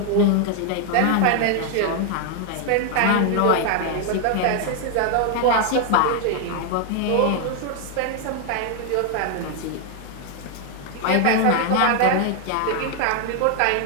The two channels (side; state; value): both; different; correlation 0.00